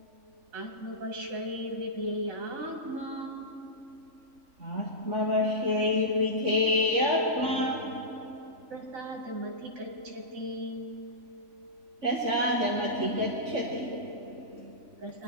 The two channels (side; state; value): left; late; 3.5 ms